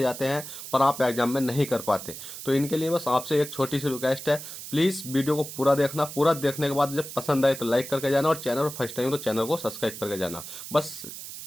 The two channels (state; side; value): noise; right; hiss, 11 dB below the sound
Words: जाते हैं पर आप एग्जाम में नहीं कर पाते। तो इनके लिए बस आपसे एक छोटी सी रिक्वेस्ट है, प्लीज वीडियो को पूरा देखना। पूरा देखने के बाद जब पसंद आए तो लाइक करके जाना, और चैनल फर्स्ट टाइम तो चैनल को सब्सक्राइब करके जाना। बस